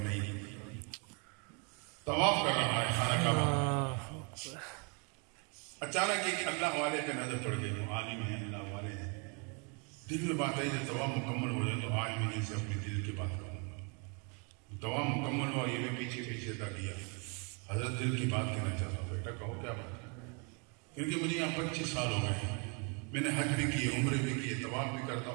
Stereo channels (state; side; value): quieter; left; 35.2 dB